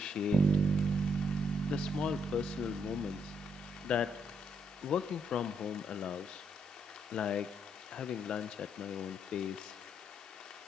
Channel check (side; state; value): both; normal; correlation 0.73